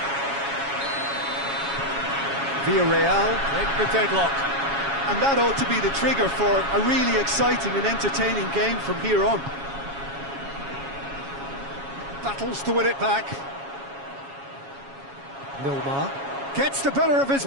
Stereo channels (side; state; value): left; late; 7.2 ms